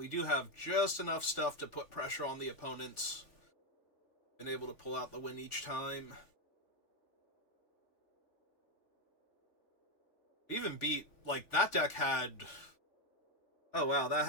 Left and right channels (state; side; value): late; right; 3.5 ms